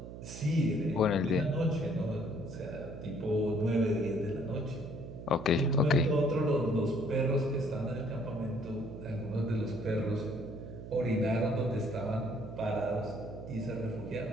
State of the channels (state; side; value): noise; right; hum, 11 dB below the sound